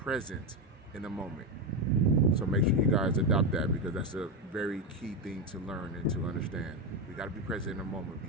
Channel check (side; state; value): both; normal; correlation 0.11